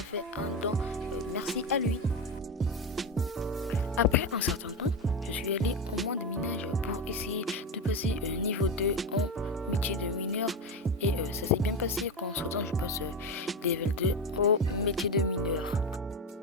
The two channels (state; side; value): normal; both; correlation 0.16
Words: un don, merci à lui. Après un certain temps, je suis allé au moins de minage pour essayer de passer niveau 2 en métier de mineur. Et ça s'est bien passé quand en temps je passe level 2 au métier de mineur.